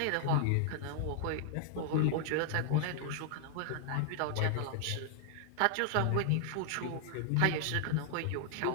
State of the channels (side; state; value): both; different; correlation 0.00